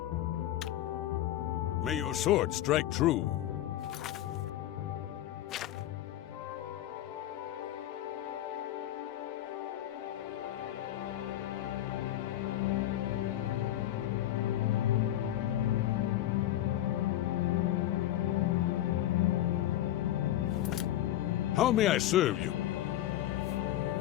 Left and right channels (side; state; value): right; quieter; 13.1 dB